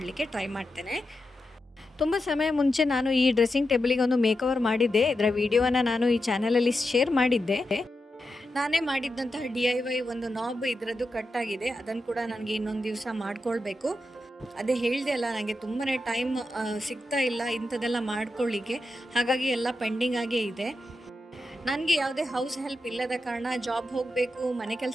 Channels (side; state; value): both; normal; correlation 0.88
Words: ಟ್ರೈ ಮಾಡ್ತೇನೆ. ತುಂಬ ಸಮಯ ಮುಂಚೆ ನಾನು ಈ ಡ್ರೆಸ್ಸಿಂಗ್ ಟೇಬಲಿಗೆ ಒಂದು ಮೇಕವರ್ ಮಾಡಿದ್ದೆ. ಇದರ ವಿಡಿಯೋನ ನಾನು ಈ ಚಾನಲಲ್ಲಿ ಶೇರ್ ಮಾಡಿದ್ದೆ. ನಾನೇ ಮಾಡಿದ್ದಂತಹ DIY ಒಂದು ನಾಬ್ ಇದರದ್ದು ಕಟ್ಟಾಗಿದೆ. ಅದನ್ನು ಕೂಡ ನನಗೆ ಇನ್ನೊಂದು ದಿವಸ ಮಾಡ್ಕೊಳ್ಬೇಕು. ಅದೇ ಹೇಳಿದೆ ಅಲ್ಲ, ನನಗೆ ತುಂಬಾ ಟೈಮ್ ಸಿಗ್ತಾ ಇಲ್ಲ ಇಂಥದ್ದೆಲ್ಲ ಮಾಡ್ಕೊಳ್ಳಿಕ್ಕೆ. ಹಾಗಾಗಿ ಎಲ್ಲ ಪೆಂಡಿಂಗ್ ಆಗೇ ಇದೆ. ನನಗೆ ಯಾವುದೇ ಹೌಸ್ ಹೆಲ್ಪ್ ಇಲ್ಲದ ಕಾರಣ ಜಾಬ್ ಹೋಗಬೇಕು, ಮನೆ